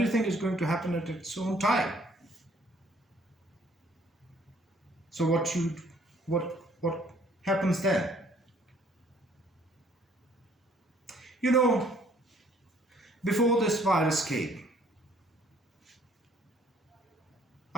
is going to happen at its own time. So what happens then? Before this virus came,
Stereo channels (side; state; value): both; normal; correlation 0.61